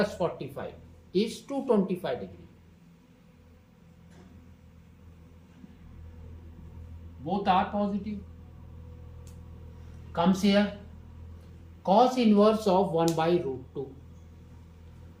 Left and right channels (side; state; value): both; identical; correlation 1.00